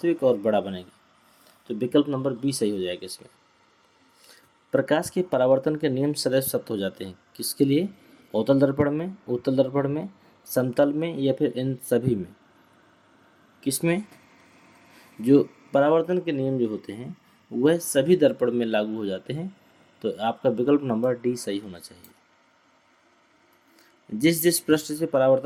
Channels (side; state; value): both; identical; correlation 1.00